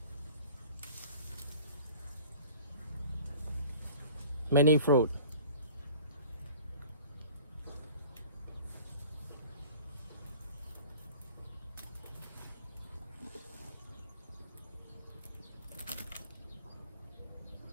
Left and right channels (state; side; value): inverted; both; correlation -0.47